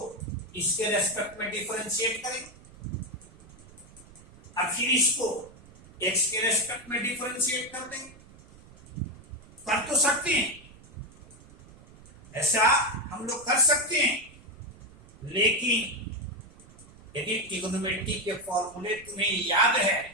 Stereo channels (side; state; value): right; noise; rumble, 22 dB below the sound